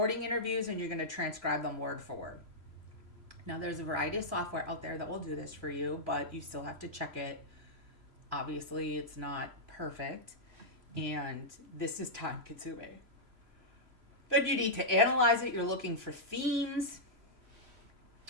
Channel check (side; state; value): left; late; 3.0 ms